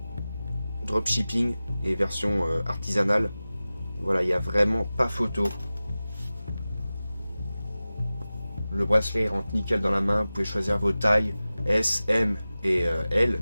dropshipping et version artisanale. Voilà, il n'y a vraiment pas photo. Le bracelet rentre nickel dans la main, vous pouvez choisir vos tailles, S, M et L.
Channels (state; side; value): inverted; both; correlation -0.96